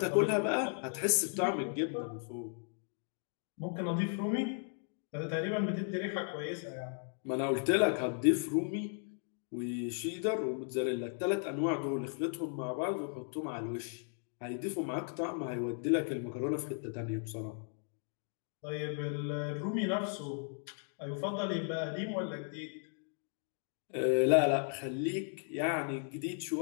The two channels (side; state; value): right; silent; 54 dB below the other